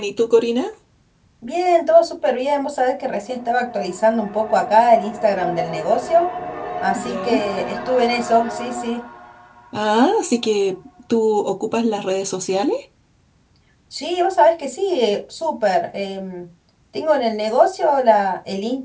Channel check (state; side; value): identical; both; correlation 1.00